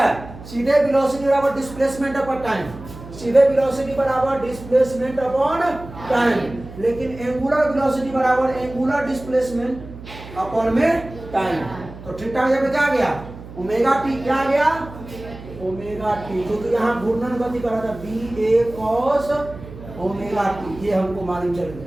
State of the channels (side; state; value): right; noise; hum, 15 dB below the sound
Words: सीधे वेलोसिटी बराबर डिस्प्लेसमेंट अपॉन टाइम, सीधे वेलोसिटी बराबर डिस्प्लेसमेंट अपॉन टाइम, लेकिन एंगुलर वेलोसिटी बराबर एंगुलर डिस्प्लेसमेंट अपॉन में टाइम। तो थीटा जब क्या गया, ओमेगा टी क्या गया, ओमेगा टी, क्योंकि यहाँ घूर्णन गति कर रहा था बी ए कॉस ओमेगा टी, ये हमको मालूम चल